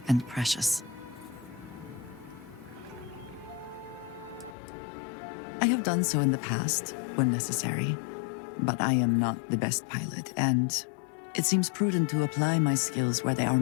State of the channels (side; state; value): right; drops out; at 4.5 s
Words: and precious. I have done so in the past, when necessary, but I am not the best pilot, and it seems prudent to apply my skills where they are